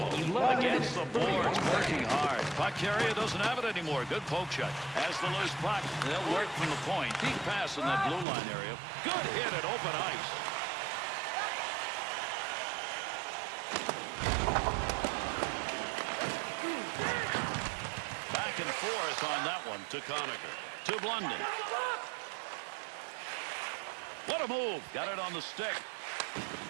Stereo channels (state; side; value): drops out; left; at 8.2 s